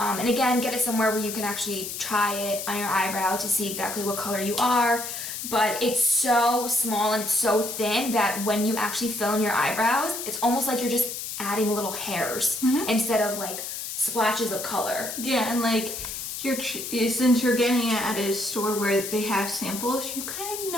again, get it somewhere where you can actually try it on your eyebrow to see exactly what color you are. But it's so small and it's so thin that when you actually fill in your eyebrows, it's almost like you're just adding little hairs instead of like splashes of color. Yeah, and like since you're getting it at a store where they have samples, you kind of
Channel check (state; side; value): noise; left; hiss, 6 dB below the sound